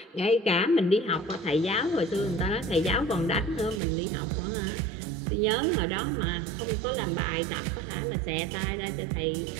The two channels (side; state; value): left; drops out; at 3.8 s